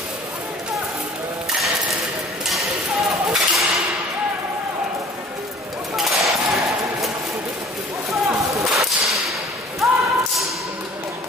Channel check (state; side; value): normal; both; correlation 0.49